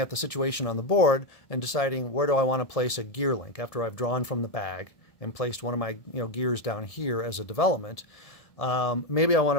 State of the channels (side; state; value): right; late; 1.7 ms